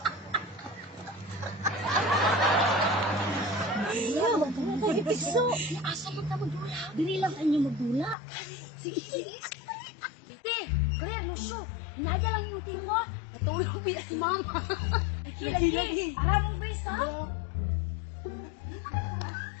Piso, asa man ka magdula? Dili lang sa inyo magdula. Sige, sige. Tite, clear no show. Hinadya lang yung tingwa. Natulog biya si mama. Lagi. Aranong bisa.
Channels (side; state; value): right; drops out; at 8.2 s